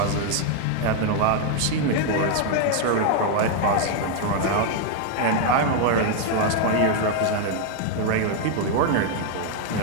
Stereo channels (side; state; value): both; different; correlation 0.00